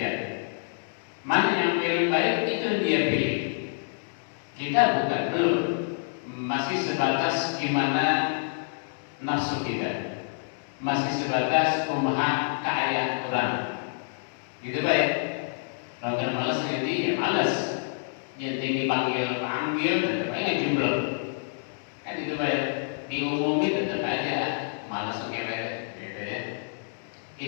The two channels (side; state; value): right; silent; digital silence